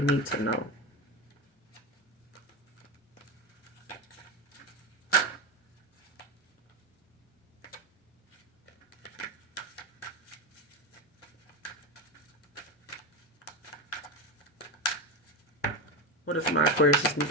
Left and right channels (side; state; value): both; normal; correlation 0.16